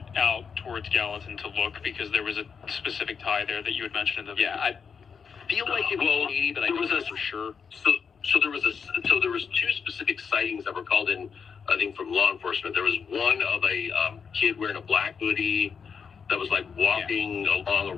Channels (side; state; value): right; quieter; 6.2 dB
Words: out towards Gallatin to look because there was a specific tie there that you had mentioned in the video. I feel like it was Katie, but I don't know for sure. So there was two specific sightings that were called in, I think, from law enforcement. There was one of a kid wearing a black hoodie that was like walking along a